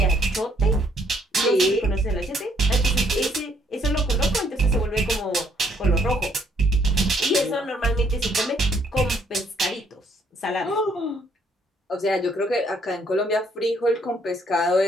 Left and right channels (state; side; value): normal; both; correlation 0.67